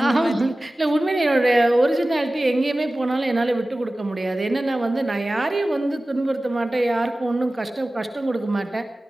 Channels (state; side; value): normal; both; correlation 0.97